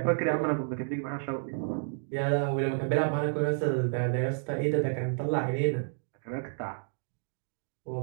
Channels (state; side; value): silent; left; digital silence